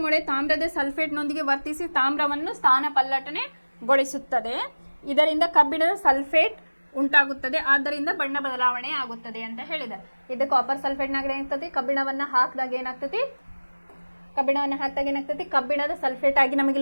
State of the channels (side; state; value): both; inverted; correlation -1.00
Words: ಮೊಳೆ ತಾಮ್ರದ ಸಲ್ಫೇಟ್ನೊಂದಿಗೆ ವರ್ತಿಸಿ ತಾಮ್ರವನ್ನು ಸ್ಥಾನಪಲ್ಲಟನೆಗೊಳಿಸುತ್ತದೆ. ಇದರಿಂದ ಕಬ್ಬಿಣದ ಸಲ್ಫೇಟ್ ಉಂಟಾಗುತ್ತದೆ, ಆದ್ದರಿಂದ ಬಣ್ಣ ಬದಲಾವಣೆ ಆಗುತ್ತದೆ ಅಂತ ಹೇಳಿದ್ದಾರೆ. ಇದು ಕಾಪರ್ ಸಲ್ಫೇಟ್ನಾಗ ಏನಾಗ್ತತಿ, ಕಬ್ಬಿಣವನ್ನು ಹಾಕಿದಾಗ ಏನಾಗ್ತತಿ, ಕಬ್ಬಿಣದ ಸಲ್ಫೇಟ್ ಆಗಿ ನಮಗೆ